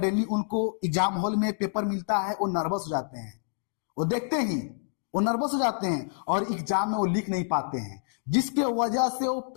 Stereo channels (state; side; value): silent; right; digital silence